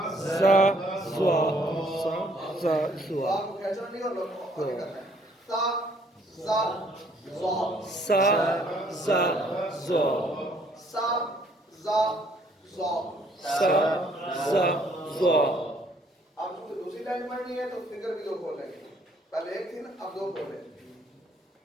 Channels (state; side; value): normal; both; correlation 0.63